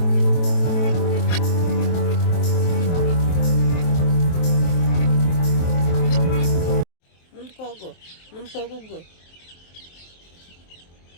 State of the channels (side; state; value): right; late; 23 ms